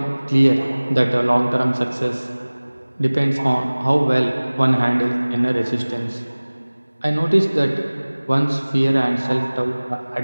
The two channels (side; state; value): both; inverted; correlation -1.00